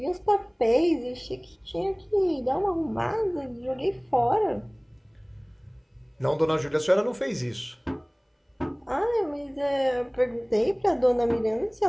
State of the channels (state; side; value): identical; both; correlation 1.00